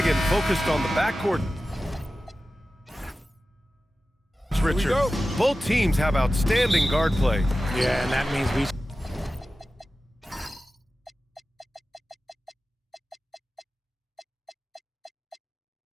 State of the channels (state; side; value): normal; both; correlation 0.94